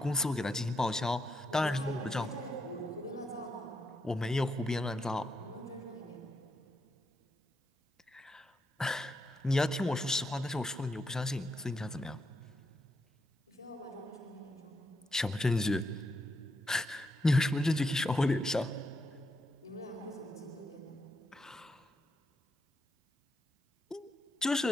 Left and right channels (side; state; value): both; normal; correlation 0.82